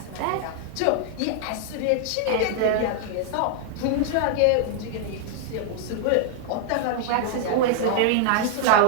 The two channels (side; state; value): both; different; correlation 0.00